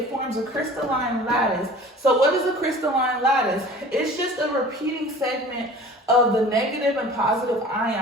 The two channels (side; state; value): both; normal; correlation 0.43